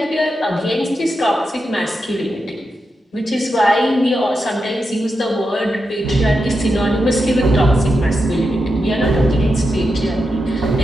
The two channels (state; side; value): normal; both; correlation 0.87